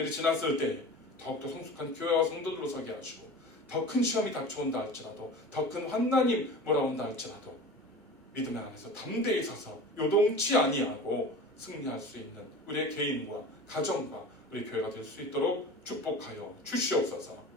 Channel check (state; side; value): normal; both; correlation 0.36